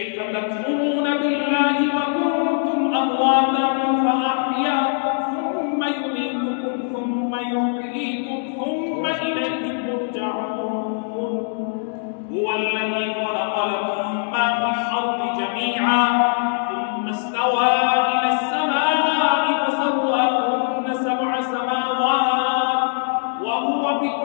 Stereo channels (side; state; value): right; silent; digital silence